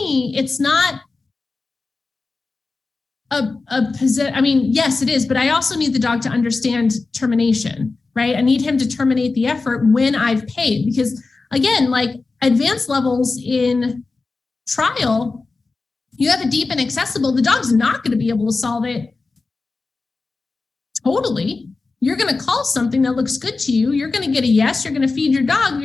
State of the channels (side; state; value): right; quieter; 3.9 dB